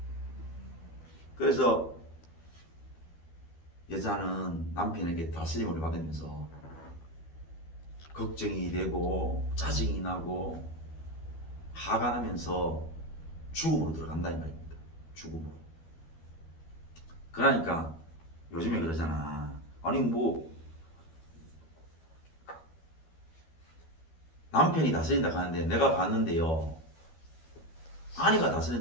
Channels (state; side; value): late; right; 12 ms